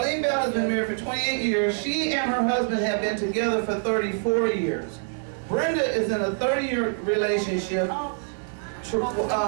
Bell has been married for 28 years. She and her husband have been together for 34 years. Brenda is in a 30-year relationship.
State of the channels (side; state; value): left; silent; digital silence